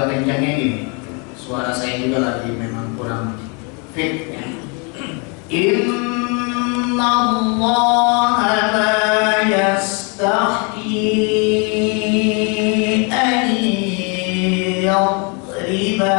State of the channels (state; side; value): quieter; right; 34.0 dB